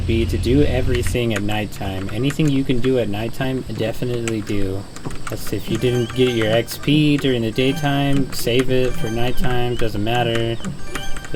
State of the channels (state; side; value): identical; both; correlation 1.00